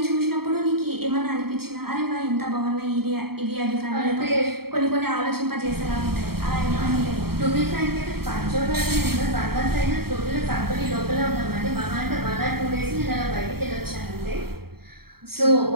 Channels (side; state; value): left; late; 0.95 ms